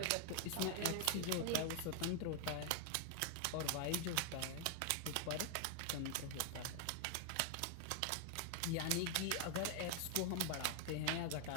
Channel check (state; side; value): different; both; correlation 0.00